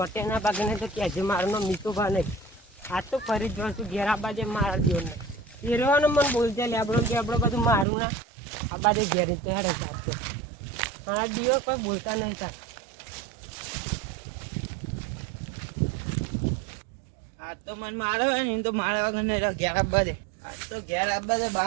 ના ભાગે ને તો કહેજે મારો નામ મીઠો ભા નહીં આ તો ફરી જ છું ઘેર આ બાજે મારા દિવસને એ રહેવાનું મને બોલશે લેબડો બેબડો બધું મારું ના આ બાજુ ઘેર રીતે હેડે ચાલતો મારા દિવસ કોઈ બોલતા નહીં ચાલ આ તો મને મારે હોય ને એમ તો મારા વગર નહીં ઘેર આપવા દે આજ તો ઘેર આપવા દે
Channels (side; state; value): left; drops out; at 7.9 s